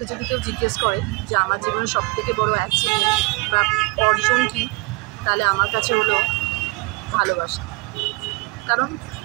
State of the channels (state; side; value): quieter; left; 24.9 dB